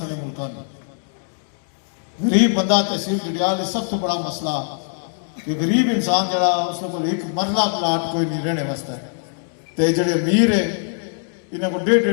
ملکوں میں غریب بندہ تحصیل ڈڈیال سب تو بڑا مسئلہ کہ غریب انسان جڑا اس کو ایک مرلہ پلاٹ کوئی نہیں رہنے واسطے تے جڑے امیر ہے انہیں کو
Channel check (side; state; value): right; silent; digital silence